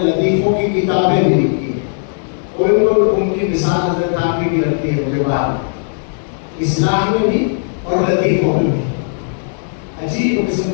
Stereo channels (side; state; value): right; silent; 69 dB below the other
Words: لطیفوں کی کتابیں بھی لکھی ہیں، اور ان کی مثال حضرت تھانوی کی رکھتی ہے مجھے بعد، اصلاح میں بھی اور لطیفوں میں بھی۔ عجیب قسم